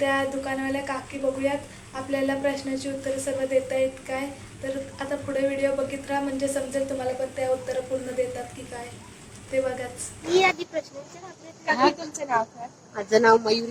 दुकानवाल्या काकी बघूयात आपल्याला प्रश्नाची उत्तरं सर्व देता येत काय। तर आता पुढे व्हिडिओ बघित राहा, म्हणजे समजेल तुम्हाला पण त्या उत्तरं पूर्ण देतात की काय ते बघाच। मी आधी प्रश्न विचारते, काकी तुमचं नाव काय? माझं नाव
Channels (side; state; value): both; identical; correlation 1.00